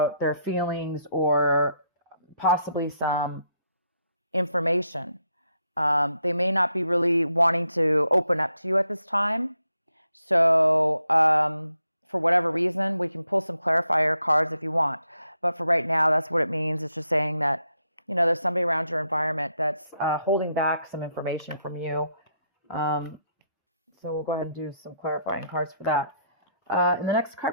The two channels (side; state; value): both; inverted; correlation -0.77